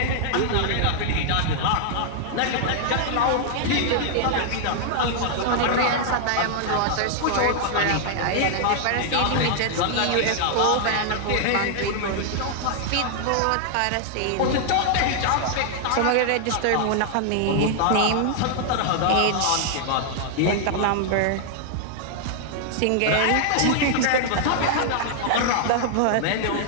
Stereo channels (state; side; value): different; both; correlation 0.00